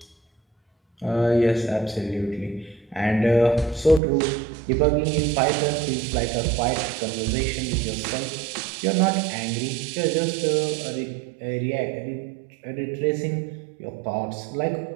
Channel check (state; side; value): drops out; left; at 4.0 s